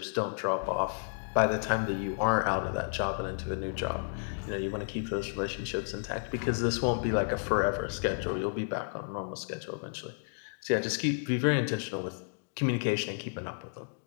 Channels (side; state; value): right; silent; digital silence